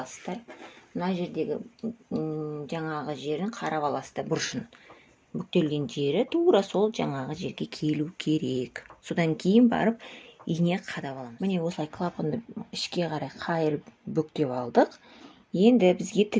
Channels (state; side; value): identical; both; correlation 1.00